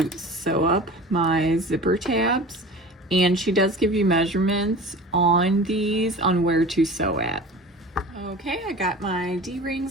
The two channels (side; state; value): both; normal; correlation 0.38